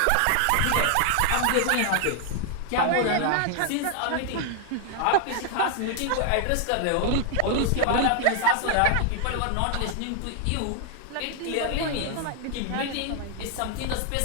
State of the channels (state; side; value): different; both; correlation 0.00